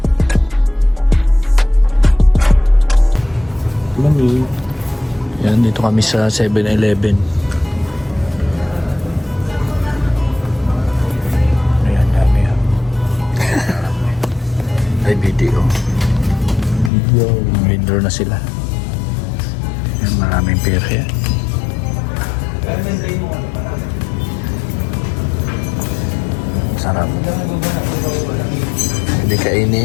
Mami. Yan, dito kami sa 7-Eleven. Ayan, dami yan. Ay, video. Withdraw na sila. Yan, maraming pera yan. Sarap. Hindi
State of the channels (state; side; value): drops out; right; at 16.9 s